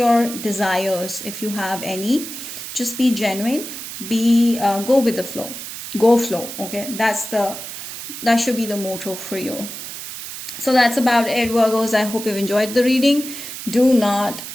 desires if you have any. Just be genuine. Go with the flow. Go flow, okay? That should be the motto for you. So that's about it, Virgos. I hope you've enjoyed the reading. Do not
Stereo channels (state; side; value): noise; right; hiss, 9 dB below the sound